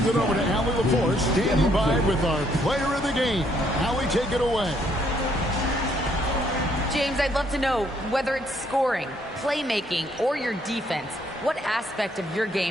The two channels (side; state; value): both; normal; correlation 0.69